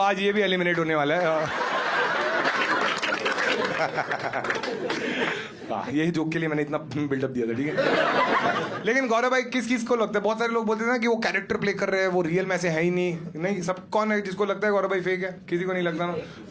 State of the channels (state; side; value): identical; both; correlation 1.00